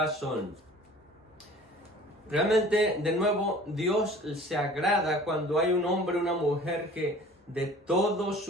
Realmente, de nuevo, Dios se agrada cuando hay un hombre o una mujer que de todo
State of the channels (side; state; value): both; normal; correlation 0.47